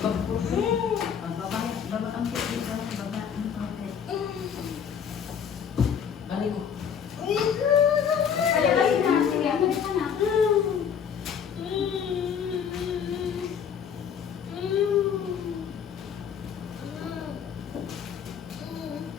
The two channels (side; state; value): right; quieter; 7.6 dB